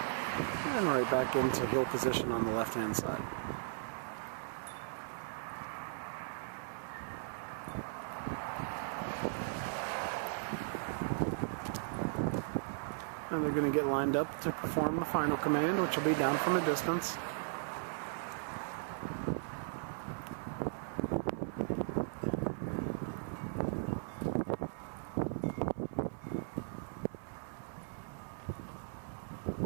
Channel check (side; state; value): left; silent; 53 dB below the other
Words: and right back into heel position on the left hand side. And they're going to get lined up to perform the final command, which will be down from a distance.